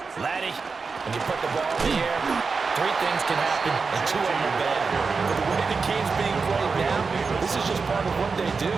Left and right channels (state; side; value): quieter; left; 4.8 dB